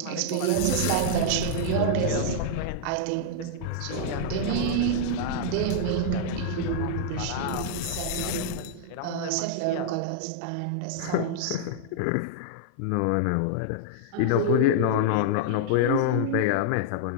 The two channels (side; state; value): both; different; correlation -0.01